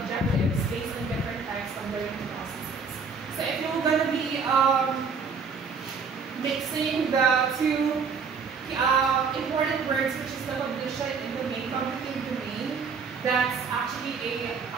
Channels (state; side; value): quieter; left; 5.2 dB